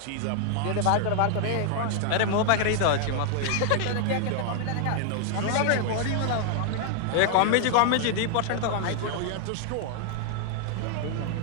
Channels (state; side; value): different; both; correlation 0.00